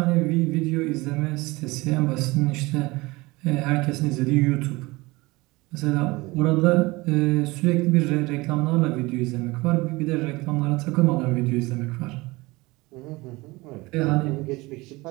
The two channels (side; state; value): left; quieter; 22.3 dB